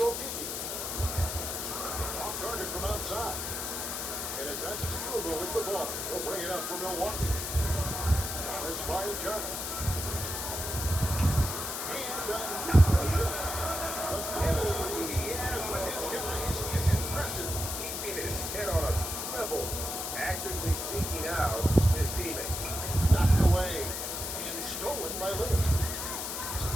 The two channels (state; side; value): noise; left; hiss, 4 dB below the sound